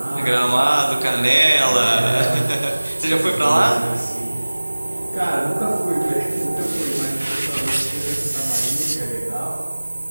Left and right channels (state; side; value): inverted; both; correlation -1.00